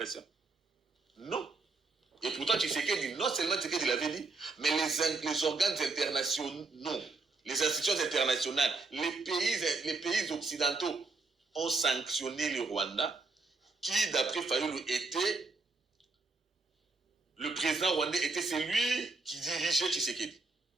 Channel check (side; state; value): left; quieter; 3.7 dB